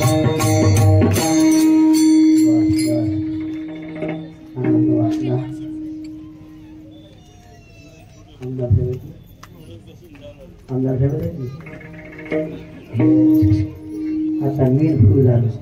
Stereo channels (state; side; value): identical; both; correlation 1.00